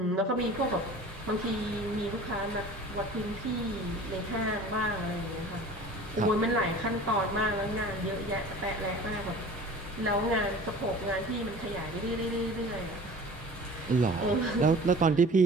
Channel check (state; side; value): normal; both; correlation 0.42